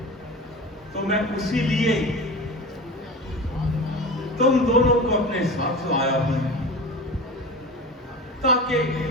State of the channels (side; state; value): both; normal; correlation 0.31